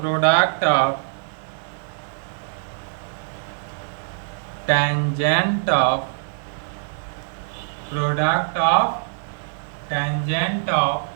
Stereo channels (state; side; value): silent; left; 63 dB below the other